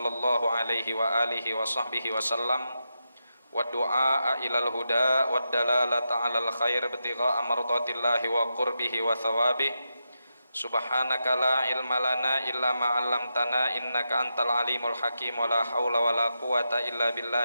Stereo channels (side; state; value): both; inverted; correlation -0.87